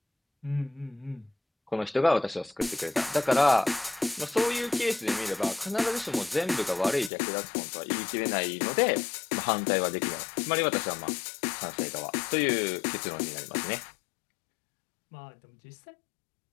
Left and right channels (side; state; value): right; drops out; at 7.1 s